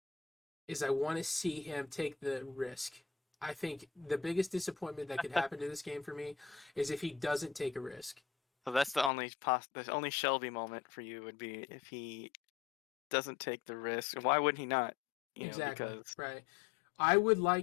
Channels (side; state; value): right; drops out; at 9.1 s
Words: is I want to see him take the risk. I think the biggest disappointment that could happen to this game for me is if he doesn't take a risk. So that's the only Shelby moment for you would be if he doesn't take the risk. Why wouldn't he not? Exactly. Right. I would